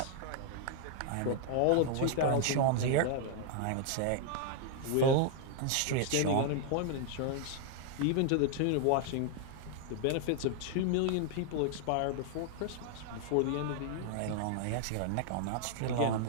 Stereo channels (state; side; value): different; both; correlation 0.00